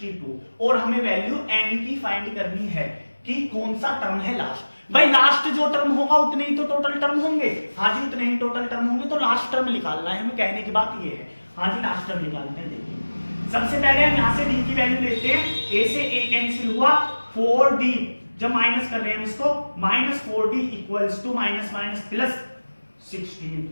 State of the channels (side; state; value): both; inverted; correlation -1.00